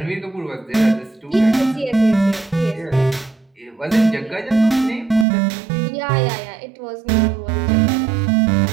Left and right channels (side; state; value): left; drops out; at 5.2 s